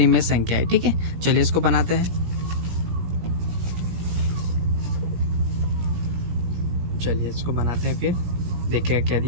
संख्या है। ठीक है, चलिए इसको बनाते हैं। चलिए इसको बनाते हैं, फिर देखिएगा क्या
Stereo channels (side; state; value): left; late; 17 ms